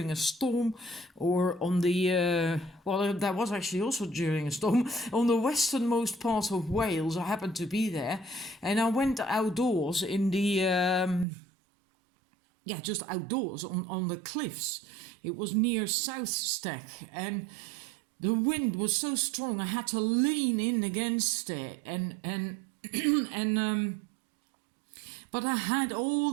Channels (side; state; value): left; drops out; at 11.2 s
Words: a storm, or on the, that was actually also during a storm, on the westernmost part of Wales. I happened to be there, and I went outdoors in the, just outdoors on the cliffs. It was near South Stack, and the wind was so strong I had to lean in against it, but I had all